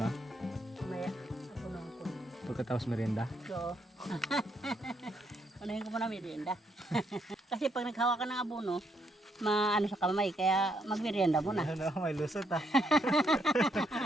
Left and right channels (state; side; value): normal; both; correlation 0.74